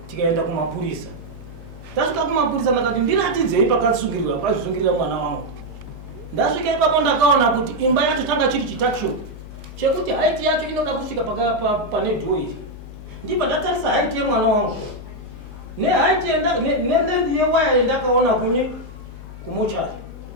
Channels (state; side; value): normal; both; correlation 0.01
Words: tikaenda kumapurisa tasvika kumapurisa ndakati ndiratidzei pakasungirira pakazvisungirira mwana wangu ndasvika ipapo ndakaona kuti imba yacho tanga chiri chitakisho chekuti haiti yacho inoda kusvika pane dhoiri ndibva ndatarisa haiti yemwana wangu nehaiti nelenzi yewaya yendakaona kunye kumochari